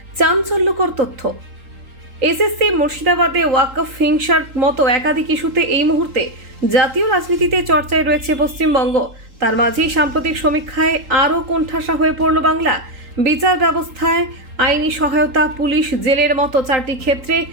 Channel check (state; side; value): late; left; 3.8 ms